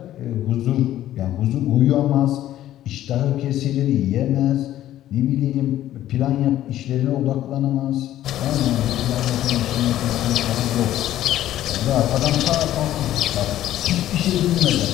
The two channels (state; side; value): quieter; right; 13.0 dB